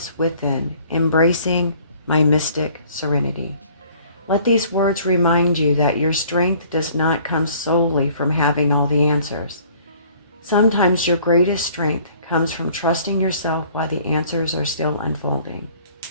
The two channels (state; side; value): inverted; both; correlation -0.55